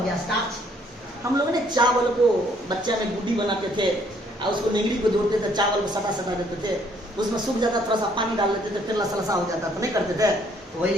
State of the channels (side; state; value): both; normal; correlation 0.65